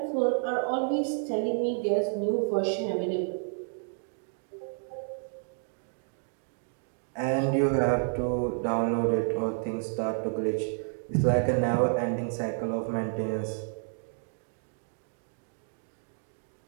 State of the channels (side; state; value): left; silent; 58 dB below the other